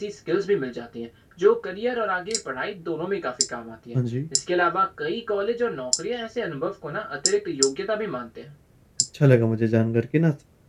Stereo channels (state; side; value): identical; both; correlation 1.00